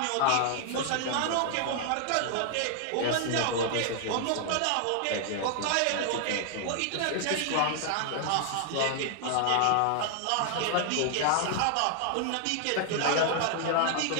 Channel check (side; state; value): both; different; correlation -0.01